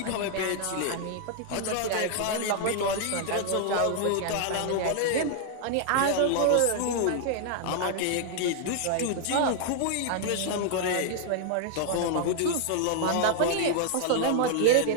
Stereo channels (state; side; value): different; both; correlation 0.00